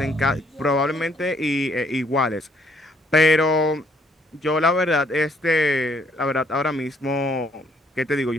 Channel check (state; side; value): normal; both; correlation 0.67